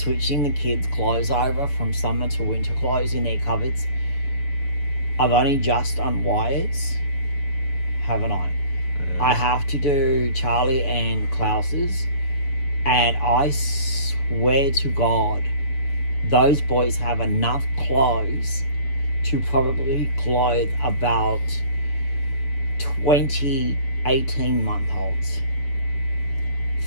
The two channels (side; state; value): right; late; 7.0 ms